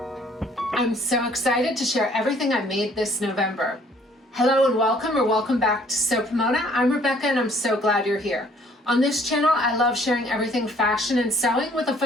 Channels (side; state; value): both; normal; correlation 0.59